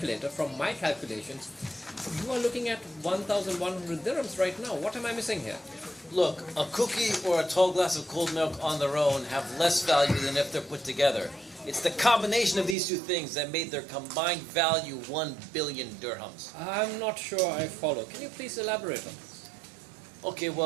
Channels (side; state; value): left; drops out; at 12.8 s